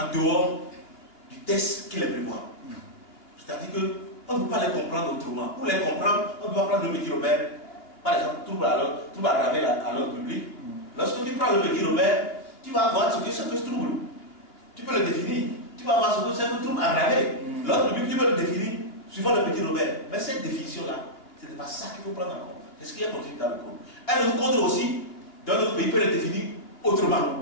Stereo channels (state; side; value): late; right; 2.8 ms